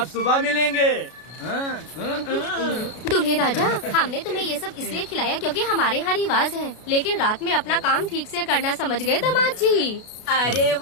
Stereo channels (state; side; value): late; right; 33 ms